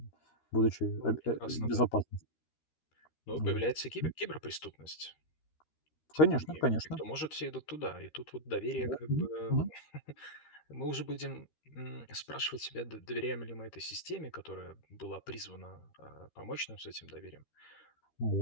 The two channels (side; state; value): right; late; 13 ms